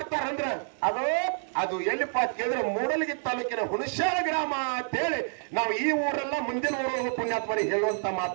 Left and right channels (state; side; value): silent; left; 59 dB below the other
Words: ಅದು ಎಲ್ಲಿಪ್ಪ ಅಂತ ಕೇಳಿದ್ರೆ ಮೂಡಲಗಿ ತಾಲೂಕಿನ ಹುಣಸಾಳ ಗ್ರಾಮ ಅಂತ ಹೇಳಿ ನಾವು ಈ ಊರೆಲ್ಲ ಮುಂದಿನ ಊರೊಳಗೆ ಪುಣ್ಯಾತ್ಮರಿ ಹೇಳುವಂತ